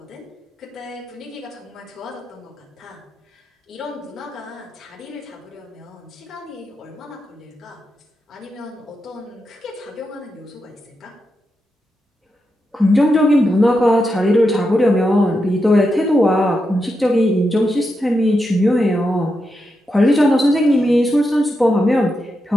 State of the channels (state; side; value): normal; both; correlation 0.86